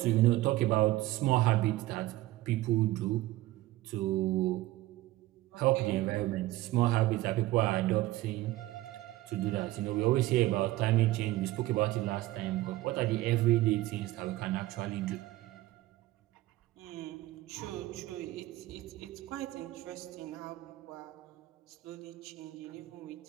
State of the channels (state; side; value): quieter; left; 17.1 dB